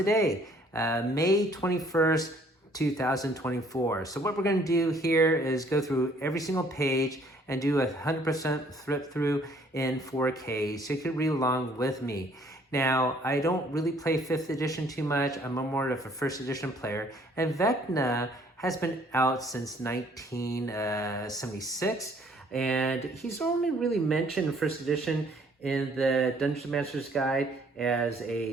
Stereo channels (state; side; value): normal; both; correlation 0.61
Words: May 21st, 2024. So what we're going to do here is go through every single page and do a 100% flip through in 4K, so you can read along with me. Now, I don't really play 5th edition too much. I'm more of a 1st edition player, and Vecna has been out since 1976, and he's only really mentioned in 1st edition in the Dungeon Master's Guide as